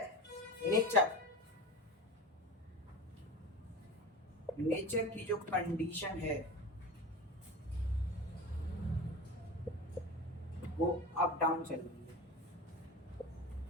नेचर, नेचर की जो कंडीशन है वो अप डाउन चल रही है।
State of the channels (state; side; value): normal; both; correlation 0.30